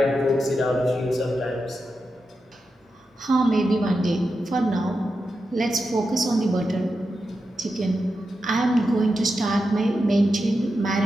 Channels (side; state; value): both; normal; correlation 0.89